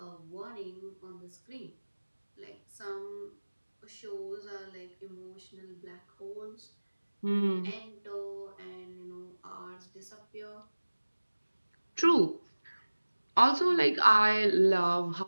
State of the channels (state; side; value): inverted; both; correlation -1.00